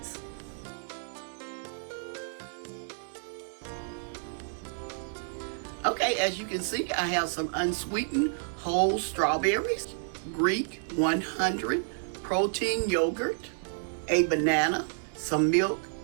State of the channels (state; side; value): silent; left; digital silence